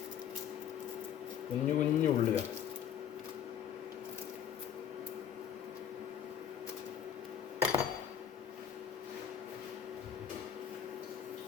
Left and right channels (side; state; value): right; quieter; 9.1 dB